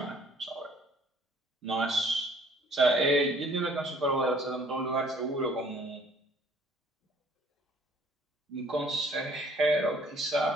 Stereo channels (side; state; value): both; normal; correlation 0.58